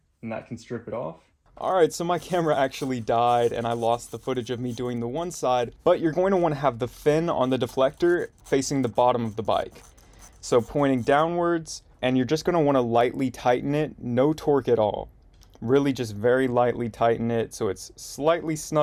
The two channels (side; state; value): both; identical; correlation 1.00